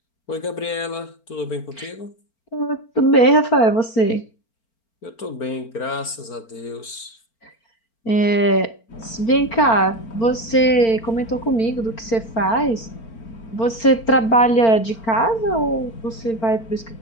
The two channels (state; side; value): late; right; 4.4 ms